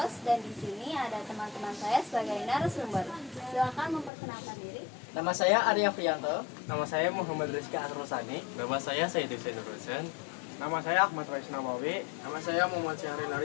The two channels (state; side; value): drops out; right; at 4.1 s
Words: dan di sini ada teman-teman saya sebagai narasumber. Silakan memperkenalkan diri. Nama saya Arya Frianto. Nama saya Muhammad Rizky Atrosani. Nama saya Said Hussein Nurhusen. Nama saya Ahmad Rais Nawawi. Nama saya Muhammad Syahril